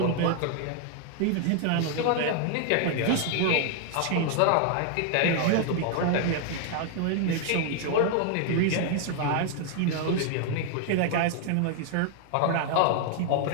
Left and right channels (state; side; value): different; both; correlation 0.00